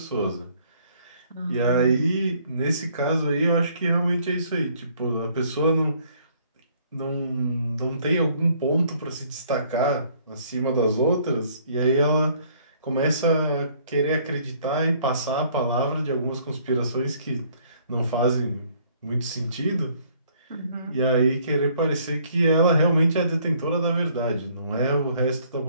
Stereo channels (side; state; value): both; inverted; correlation -0.62